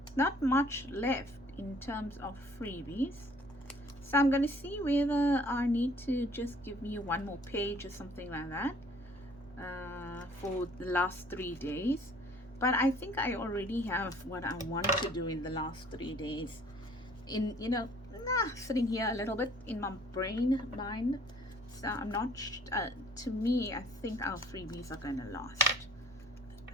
Not much left in terms of freebies. So I'm going to see whether I need to just give me one more page or something like that for the last 3 days. But I think I already have what I want to do in the last 3 days. In, you know, sitting here a little bit in my mind. So I'm not, to me, I think our freebies are going to last. I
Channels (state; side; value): normal; both; correlation 0.56